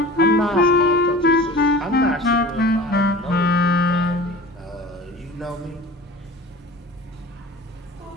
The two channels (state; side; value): normal; both; correlation 0.38